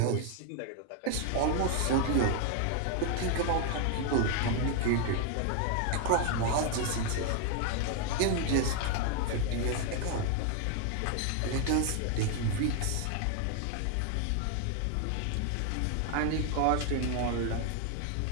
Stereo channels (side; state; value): both; different; correlation 0.00